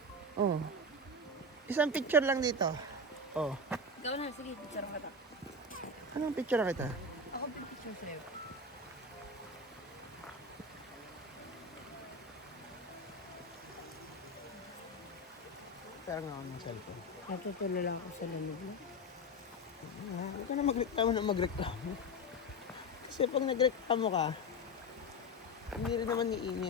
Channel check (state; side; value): normal; both; correlation 0.19